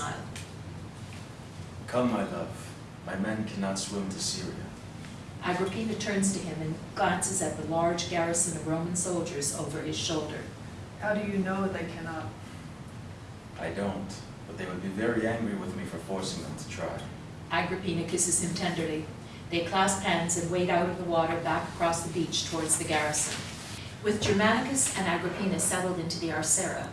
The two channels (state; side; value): identical; both; correlation 1.00